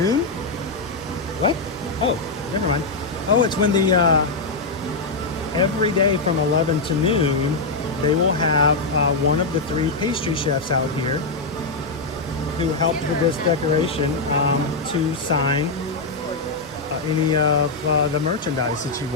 What? Oh, never mind. Oh, it's when the every day from 11 to noon, they will have one of the 3 pastry chefs out here who helped with this decoration to sign any of the merchandise that you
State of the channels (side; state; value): right; quieter; 3.5 dB